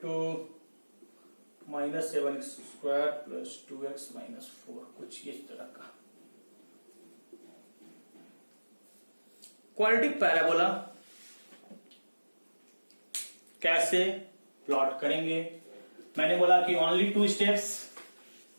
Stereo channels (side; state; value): both; inverted; correlation -1.00